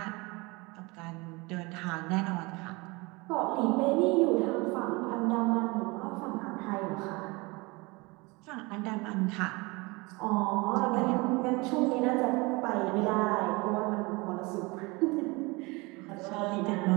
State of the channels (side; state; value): left; quieter; 25.3 dB